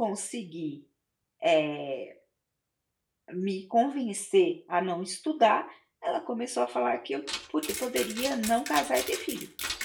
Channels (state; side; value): identical; both; correlation 1.00